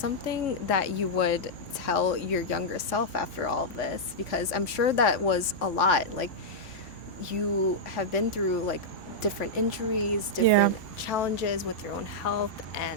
that you would tell your younger self after all of this? Because I'm sure that was a lot. Like, you have been through like different injuries, different challenges with your own health,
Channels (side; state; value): both; normal; correlation -0.07